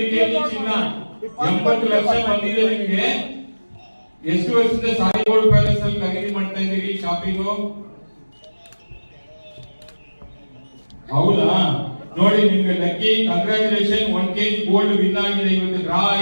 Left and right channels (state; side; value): inverted; both; correlation -1.00